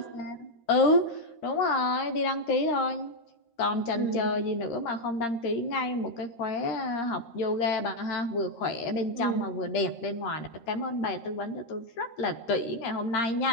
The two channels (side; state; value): right; late; 13 ms